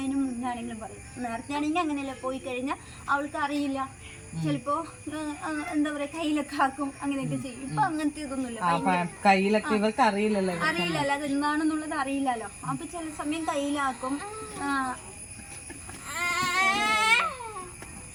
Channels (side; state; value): both; identical; correlation 1.00